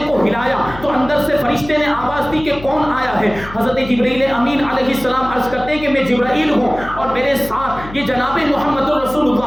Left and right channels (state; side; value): noise; left; hum, 15 dB below the sound